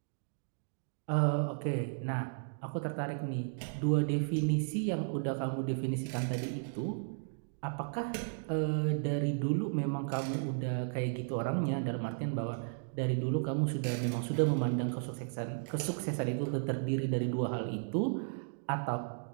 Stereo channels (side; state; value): left; silent; digital silence